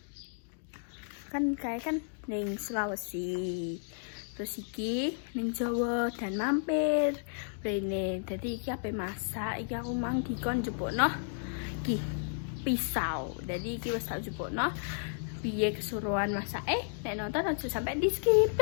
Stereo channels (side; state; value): right; silent; digital silence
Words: Kan ning Sulawesi, terus iki ning Jawa dan mampir rene. Dadi iki ape masak, iki aku mang dikon njupukno iki pisau. Dadi iki wis tak njupukno piye kesuruhan masak. Nek nonton aja sampai di skip.